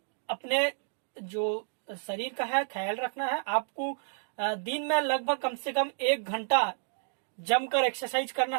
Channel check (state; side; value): silent; left; digital silence